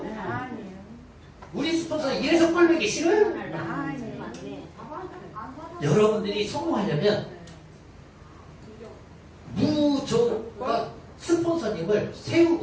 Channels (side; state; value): both; identical; correlation 1.00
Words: 아니요. 우리 스폰서는 이래서 꼴보기 싫어요. 여러분들이 성공하려면 무조건 스폰서님을